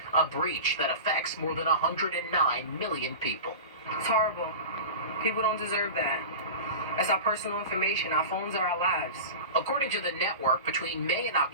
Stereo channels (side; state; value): both; inverted; correlation -0.31